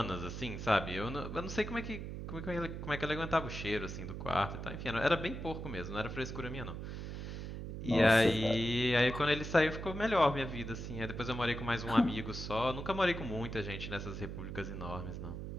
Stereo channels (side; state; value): right; noise; hum, 7 dB below the sound